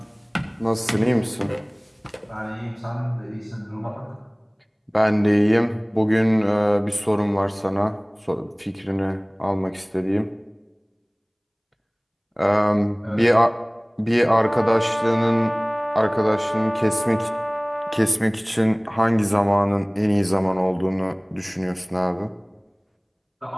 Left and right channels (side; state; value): both; identical; correlation 1.00